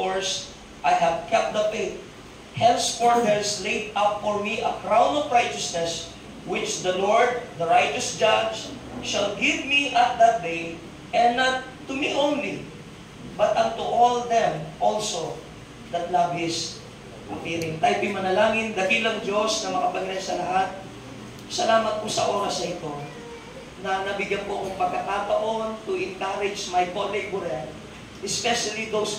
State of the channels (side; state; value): both; identical; correlation 1.00